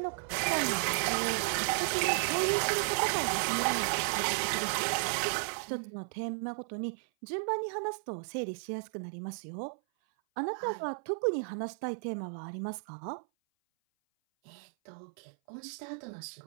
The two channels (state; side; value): silent; left; 55 dB below the other